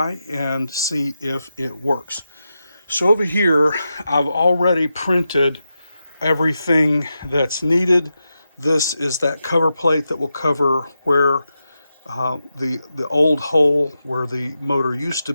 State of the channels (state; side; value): inverted; both; correlation -0.89